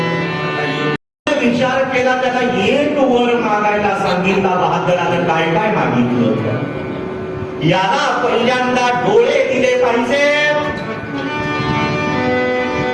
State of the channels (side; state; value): both; identical; correlation 1.00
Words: विचार केला, त्याला एक वर मागायला सांगितला. बहादरानं काय काय मागितलं? याला पहिल्यांदा डोळे दिले पाहिजे,